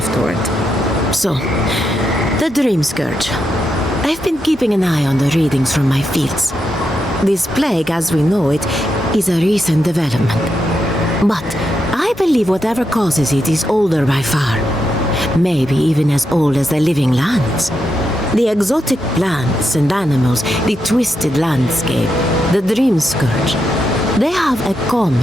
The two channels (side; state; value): both; normal; correlation 0.84